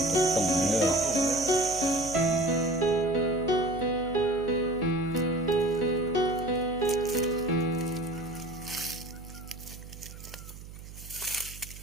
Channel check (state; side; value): noise; right; hum, 15 dB below the sound